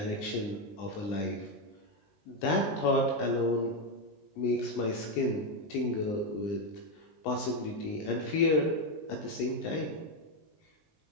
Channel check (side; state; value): right; late; 20 ms